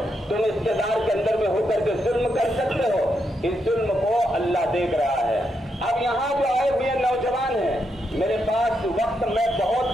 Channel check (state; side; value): normal; both; correlation 0.81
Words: तुम इक़्तिदार के अंदर में होकर के जुल्म कर सकते हो। इस जुल्म को अल्लाह देख रहा है। अब यहाँ जो आए हुए नौजवान हैं, मेरे पास वक्त मैं बहुत